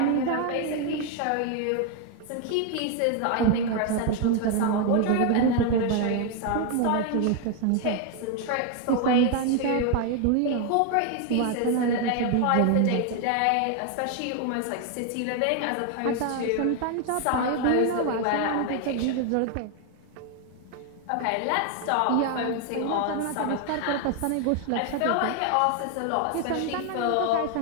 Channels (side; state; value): both; different; correlation 0.00